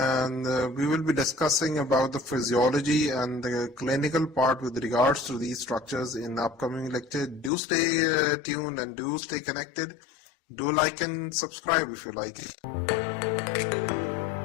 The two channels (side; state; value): right; drops out; at 7.5 s